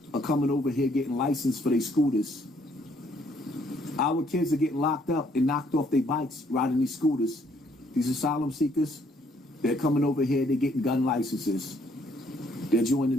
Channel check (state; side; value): normal; both; correlation 0.67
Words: are coming over here getting licensed for their scooters. Our kids are getting locked up and knocked off their bikes riding these scooters. These asylum seekers, they're coming over here, they're getting gun licenses. They're joining